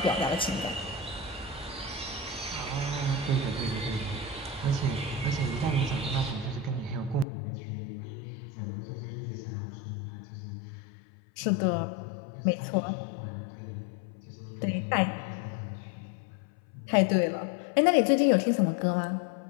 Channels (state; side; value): drops out; right; at 7.2 s